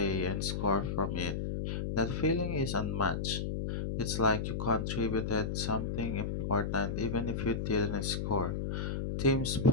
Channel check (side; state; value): left; noise; hum, 2 dB below the sound